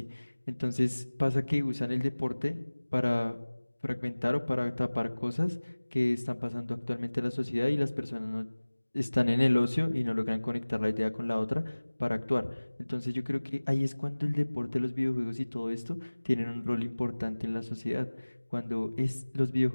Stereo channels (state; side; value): inverted; both; correlation -1.00